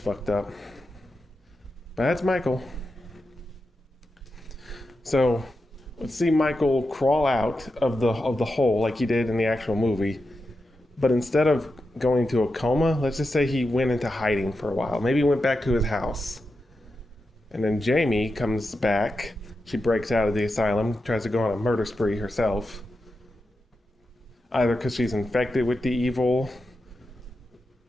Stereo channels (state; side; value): normal; both; correlation 0.89